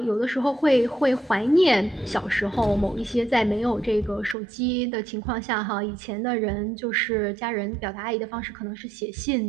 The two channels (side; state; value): left; drops out; at 4.4 s